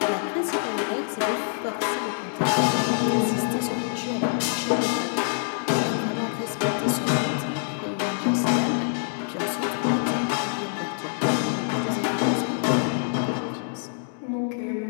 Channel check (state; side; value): silent; right; digital silence